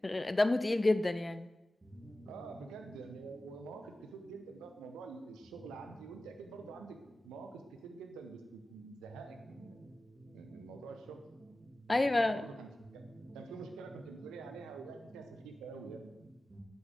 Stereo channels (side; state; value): both; normal; correlation 0.95